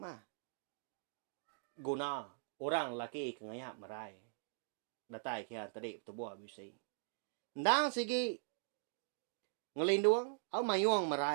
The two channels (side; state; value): left; silent; digital silence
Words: Guna orang laki kengayak merai. Datai kian tadi tubuh bisi. Ndang sigi ngelindung au mayuang